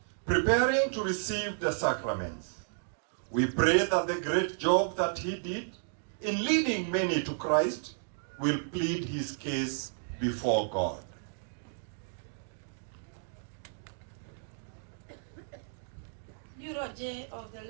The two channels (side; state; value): left; silent; digital silence